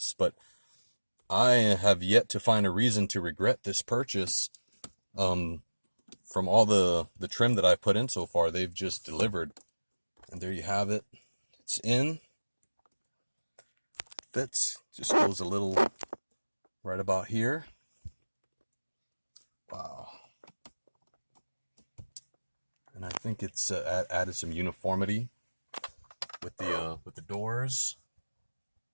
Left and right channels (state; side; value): inverted; both; correlation -1.00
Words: But I have yet to find a reason to regret this purchase. From all the trim that I've put in so far, they've just delivered. And there you have it. It's in. Fits. Just goes a little right about here. Wow. And I think it's added some uniformity with the doors.